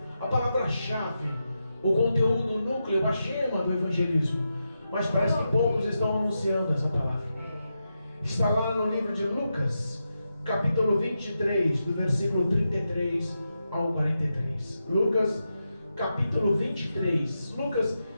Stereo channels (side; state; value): both; inverted; correlation -0.87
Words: a palavra-chave, o conteúdo, o núcleo, a gema do evangelismo. Mas parece que poucos estão anunciando essa palavra. Está lá no livro de Lucas, capítulo 23, do versículo 33 ao 43. Lucas, capítulo 23. Lucas